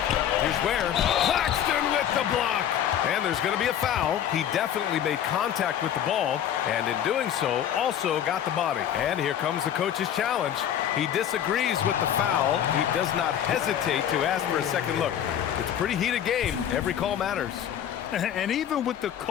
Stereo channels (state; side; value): quieter; right; 10.0 dB